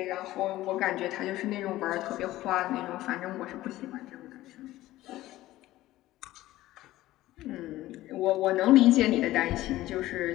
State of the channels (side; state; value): right; quieter; 16.0 dB